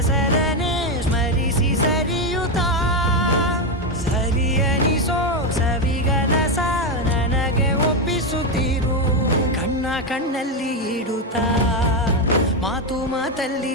ಸ್ಮರಿಸಿ ಸರಿಯುತ್ತಾ, ಸರಿಯನಿಸೋ ಸವಿಗನಸ ನನಗೆ ಒಪ್ಪಿಸುತ್ತೀರು. ಕಣ್ಣಲ್ಲಿ ಇಡುತ್ತಾ, ಮಾತಲ್ಲಿ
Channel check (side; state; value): both; normal; correlation 0.08